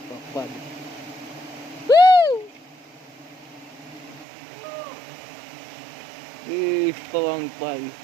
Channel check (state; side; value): drops out; left; at 4.2 s